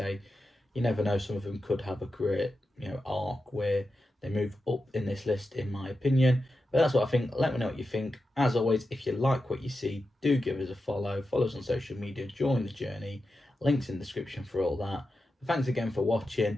you never know, some of them could have a career arc where they move up in this list, in my opinion. But that's what I think. Let me know what you think. As always, if you like what you see, do give us a follow. Follow us on social media. Join the journey. Links in the description for all that. Thanks again for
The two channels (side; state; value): both; normal; correlation 0.90